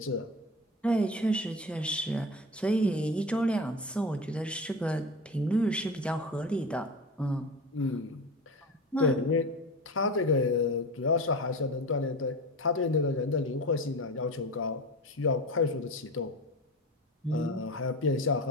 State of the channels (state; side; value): normal; both; correlation 0.29